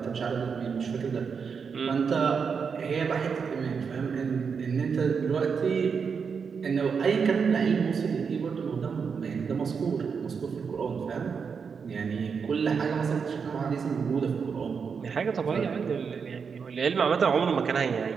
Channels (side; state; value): left; quieter; 6.0 dB